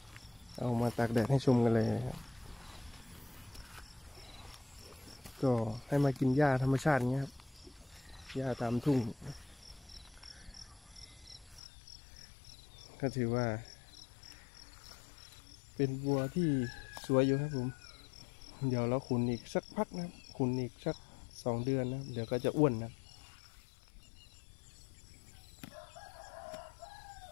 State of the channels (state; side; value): drops out; right; at 11.6 s